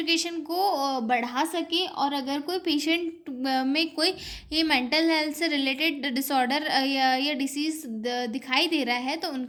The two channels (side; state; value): both; identical; correlation 1.00